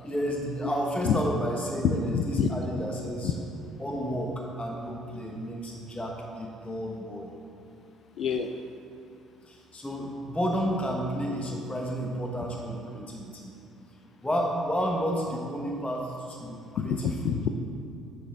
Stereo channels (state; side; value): normal; both; correlation 0.65